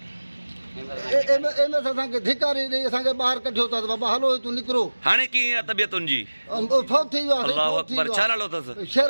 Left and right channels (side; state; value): both; inverted; correlation -1.00